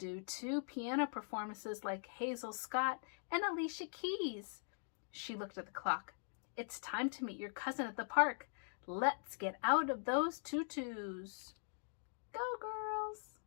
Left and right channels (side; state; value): right; silent; digital silence